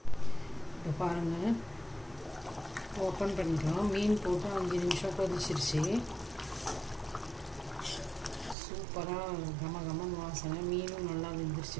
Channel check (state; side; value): drops out; left; at 8.6 s